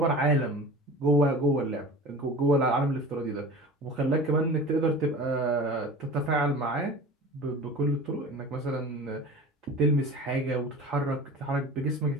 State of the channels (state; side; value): normal; both; correlation 0.37